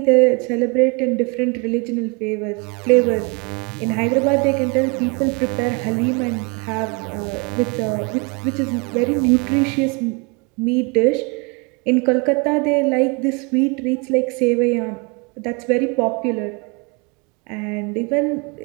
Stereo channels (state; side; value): quieter; left; 30.7 dB